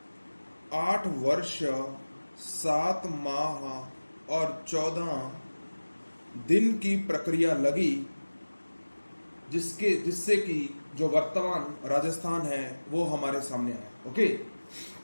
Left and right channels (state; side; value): inverted; both; correlation -1.00